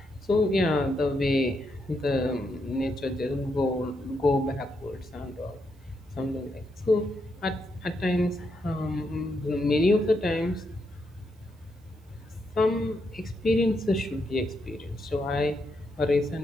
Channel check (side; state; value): both; normal; correlation 0.81